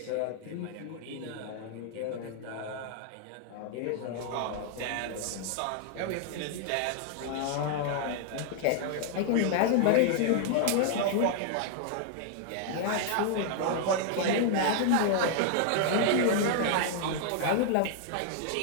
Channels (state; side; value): different; both; correlation 0.00